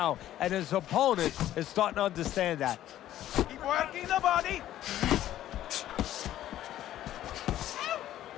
and his opponent is starting to understand that. Keep working the body.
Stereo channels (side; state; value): right; quieter; 12.8 dB